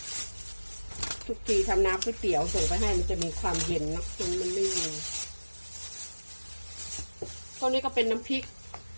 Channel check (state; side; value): inverted; both; correlation -1.00